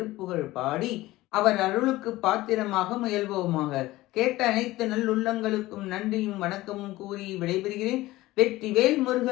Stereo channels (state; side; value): quieter; right; 17.8 dB